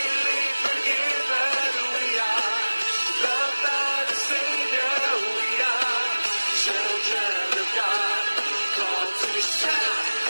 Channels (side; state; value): both; inverted; correlation -1.00